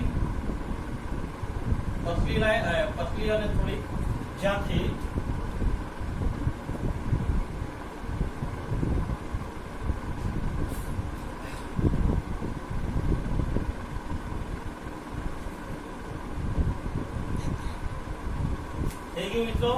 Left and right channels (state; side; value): identical; both; correlation 1.00